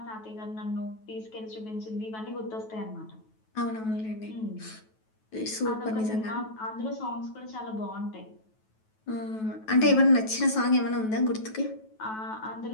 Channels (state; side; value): late; right; 9.2 ms